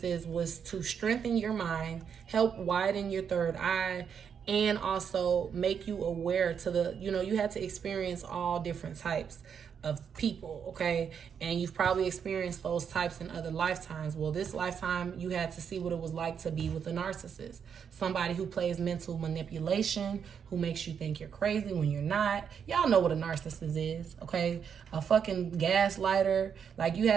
was to strengthen your mind, help widen your third eye, and also make you aware to you had to experience all different types of people, okay? And you've probably experienced those types in other lifetimes. Well, this lifetime, you had to see what it was like to be with a narcissist. Somebody who plays mental manipulation, who makes you think you're crazy when you're not. Y'all know what a narcissist is, okay? A fucking gaslighter. Like, you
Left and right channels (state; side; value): quieter; left; 7.3 dB